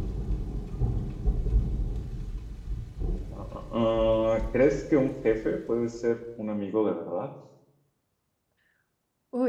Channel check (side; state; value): both; identical; correlation 1.00